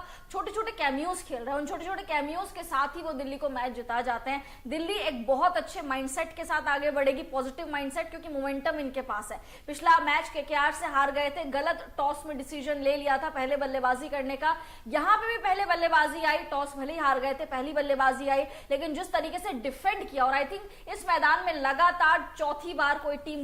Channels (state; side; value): identical; both; correlation 1.00